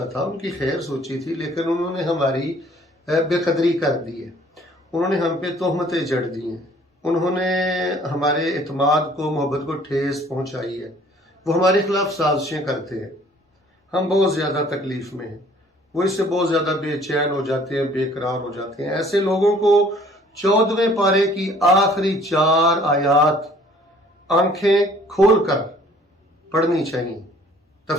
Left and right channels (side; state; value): both; normal; correlation 0.56